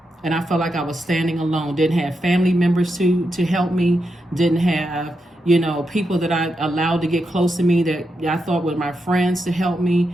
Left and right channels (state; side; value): normal; both; correlation 0.85